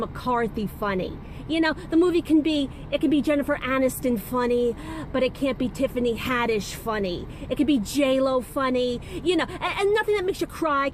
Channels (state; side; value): identical; both; correlation 1.00